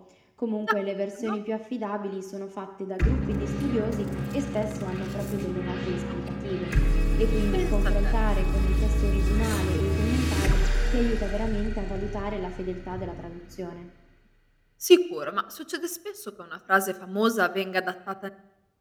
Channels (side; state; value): both; identical; correlation 1.00